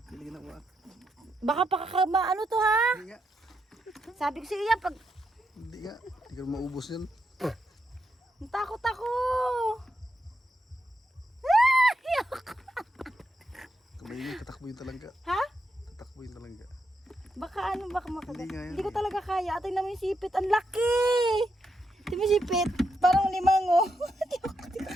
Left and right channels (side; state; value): both; normal; correlation 0.82